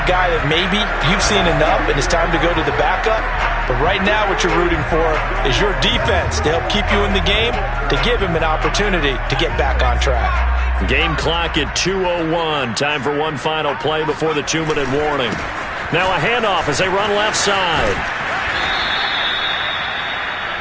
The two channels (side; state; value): both; identical; correlation 1.00